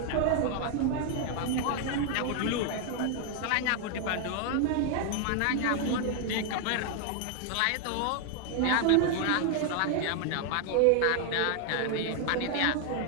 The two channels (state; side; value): different; both; correlation 0.00